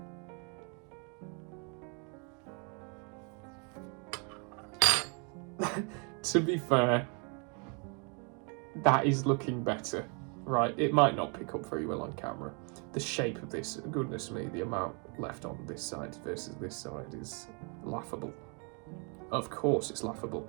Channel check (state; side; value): quieter; left; 36.2 dB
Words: To be fair, that is looking better, right? It might not pick up very well on camera. The shape of this, goodness me, the amount left on this side versus this side is laughable. Of course it's laughable.